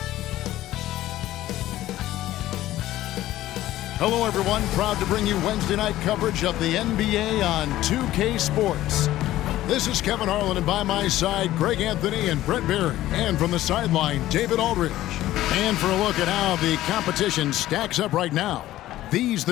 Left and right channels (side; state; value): right; quieter; 14.7 dB